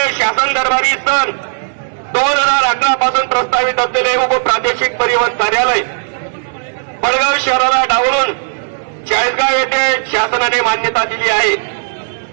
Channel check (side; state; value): left; silent; digital silence